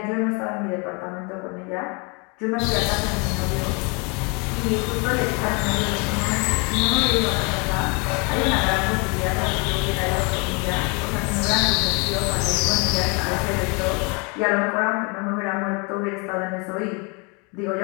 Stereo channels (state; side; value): quieter; right; 31.9 dB